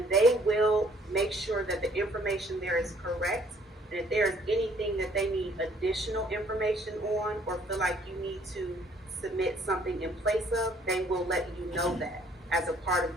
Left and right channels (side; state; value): both; normal; correlation 0.61